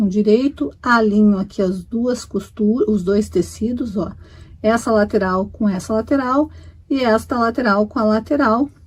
direito, alinho aqui as duas costuras, os dois tecidos, ó. Essa lateral com essa lateral e esta lateral com a lateral.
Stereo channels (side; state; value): both; identical; correlation 1.00